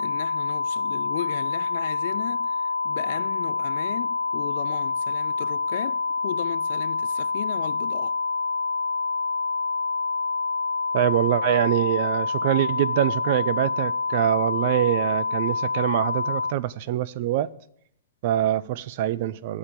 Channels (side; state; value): both; inverted; correlation -0.60